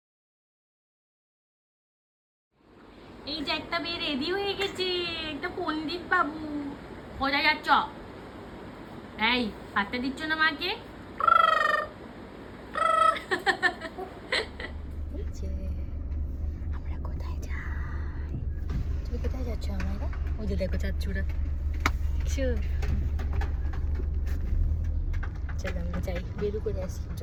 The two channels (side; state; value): both; identical; correlation 1.00